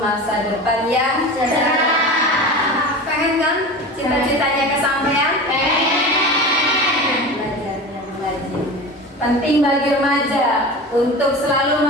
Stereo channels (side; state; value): both; normal; correlation 0.31